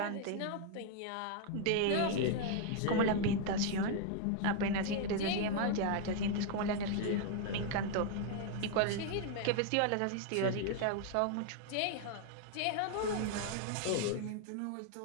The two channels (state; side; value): different; both; correlation 0.00